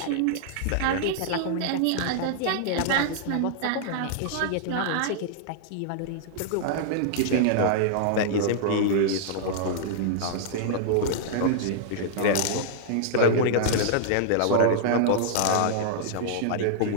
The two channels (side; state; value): both; different; correlation -0.01